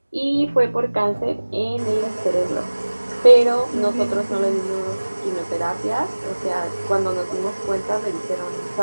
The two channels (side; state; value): both; inverted; correlation -1.00